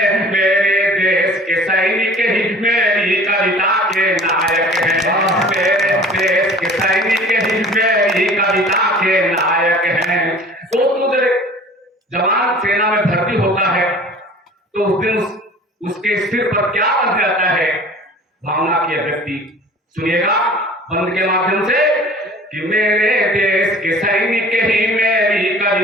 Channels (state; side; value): normal; both; correlation 0.46